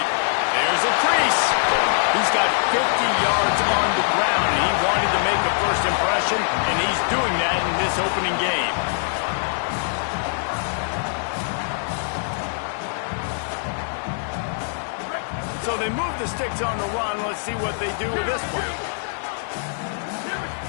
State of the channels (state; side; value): silent; right; digital silence